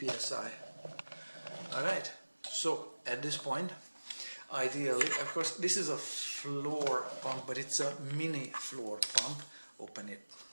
psi. Alright, so at this point, ideally, of course this is a floor pump, but it's a mini floor pump. Open it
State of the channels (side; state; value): both; inverted; correlation -1.00